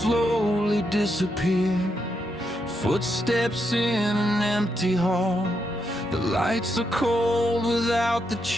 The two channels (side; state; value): both; normal; correlation 0.81